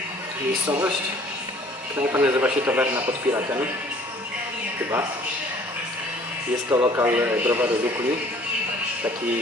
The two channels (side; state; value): both; normal; correlation 0.55